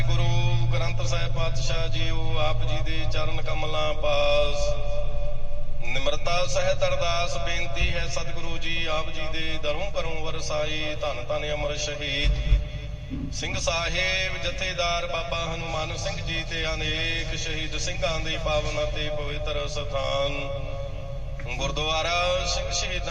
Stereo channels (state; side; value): identical; both; correlation 1.00